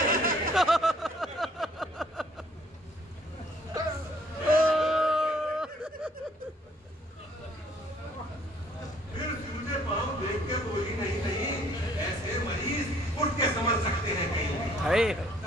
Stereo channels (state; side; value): normal; both; correlation 0.61